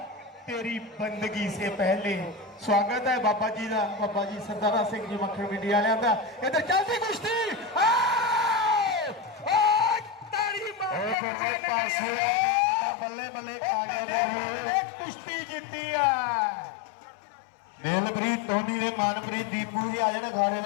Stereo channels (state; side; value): drops out; right; at 11.2 s